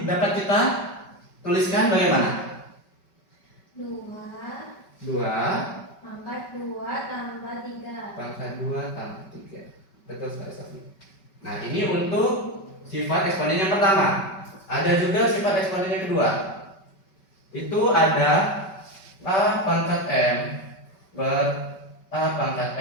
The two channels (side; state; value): right; late; 5.2 ms